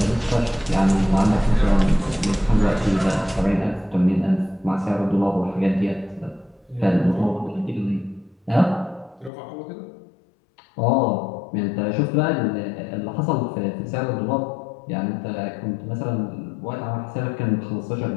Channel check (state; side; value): drops out; right; at 9.3 s